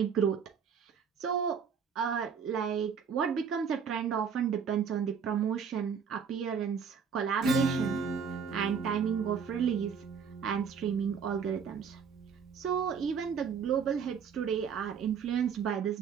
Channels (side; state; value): left; quieter; 6.6 dB